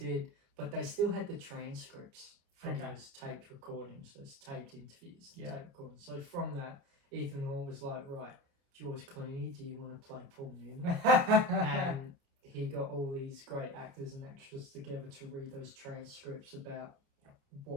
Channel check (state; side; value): late; left; 29 ms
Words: but they still had the transcripts from Okay. those taped recordings, those taped interviews, Yeah. taped recordings. So from that, Ethan Hawke was like, right, George Clooney, do you want to play Paul Newman? And he got all these great actors and actresses together to read those transcripts about